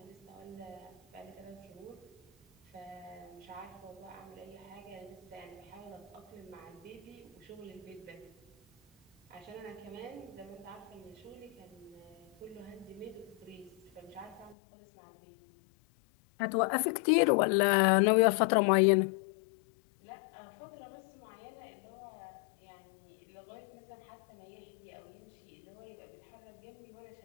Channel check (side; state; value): right; drops out; at 14.6 s